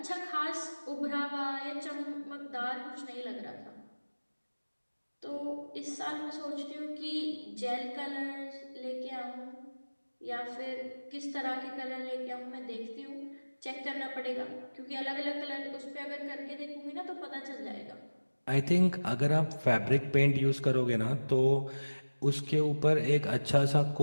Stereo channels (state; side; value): inverted; both; correlation -1.00